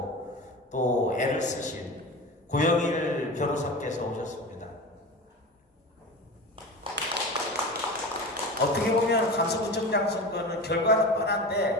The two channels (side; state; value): both; normal; correlation 0.30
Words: 또 애를 쓰신 고영일 변호사께서 오셨습니다. 어떻게 보면 강서구청장 선거는 결과는